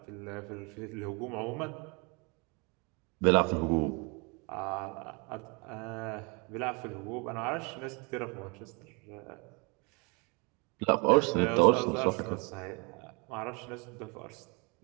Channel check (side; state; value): left; quieter; 31.1 dB